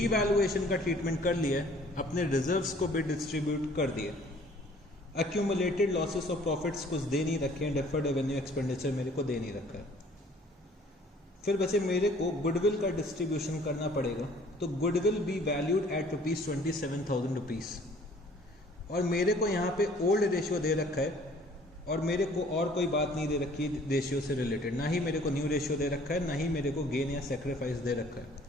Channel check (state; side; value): normal; both; correlation 0.55